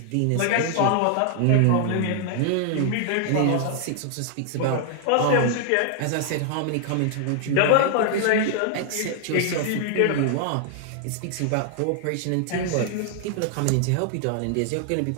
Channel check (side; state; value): both; different; correlation 0.00